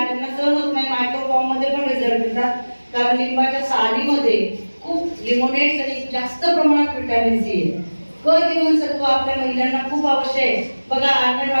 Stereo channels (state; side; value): inverted; both; correlation -1.00